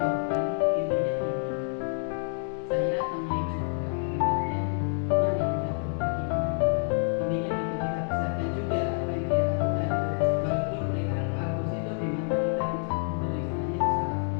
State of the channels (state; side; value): silent; right; 59 dB below the other